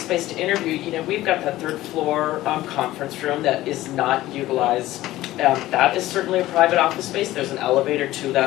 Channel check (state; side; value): quieter; right; 16.0 dB